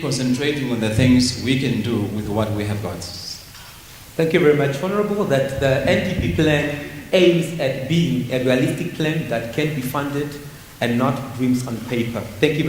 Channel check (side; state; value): both; identical; correlation 1.00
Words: concentrating on the things we can do with what we have got. Thank you very much, Honorable. That the NDP plan aims at being a realistic plan that can be funded and not dreams on paper. Thank you